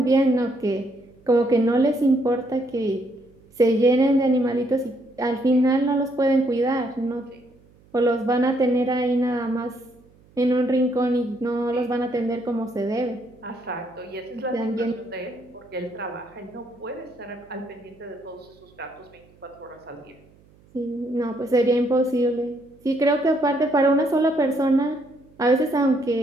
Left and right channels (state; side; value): noise; right; hum, 29 dB below the sound